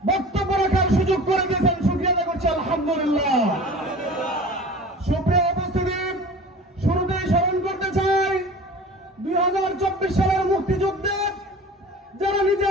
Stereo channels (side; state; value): both; normal; correlation 0.39